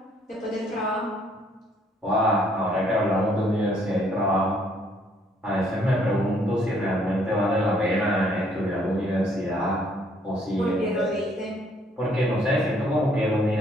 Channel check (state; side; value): normal; both; correlation 0.65